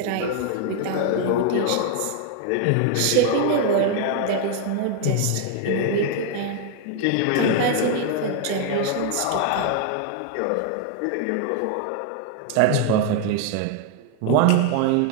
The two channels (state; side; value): different; both; correlation 0.01